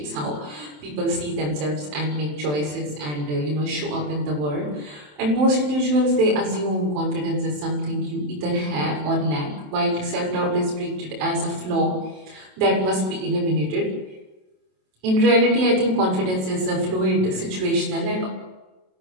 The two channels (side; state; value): left; late; 27 ms